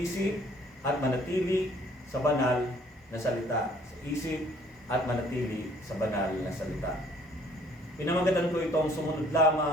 at manatili sa banal na salita. Isa-isip at manatili sa banal na salita. Pinamagatan ko itong sumunod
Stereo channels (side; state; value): both; normal; correlation 0.59